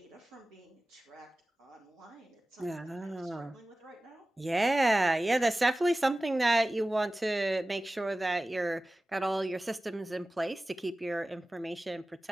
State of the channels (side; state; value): both; normal; correlation 0.97